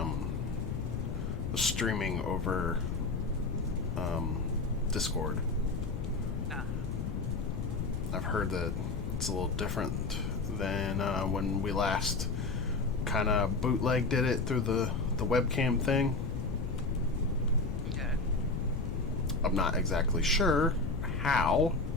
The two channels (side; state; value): left; noise; rumble, 2 dB below the sound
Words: streaming over Discord. Ah. I've heard that it's a little different than when we last kind of bootleg did it through the webcam thing. Okay. I'm not exactly sure how,